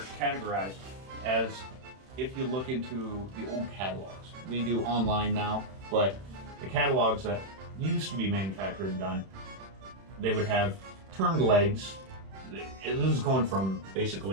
categorized as, if you look into the old catalogs. We do online now, but the catalogs that used to be manufactured and done, they would have turned legs. This is going from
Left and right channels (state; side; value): late; left; 31 ms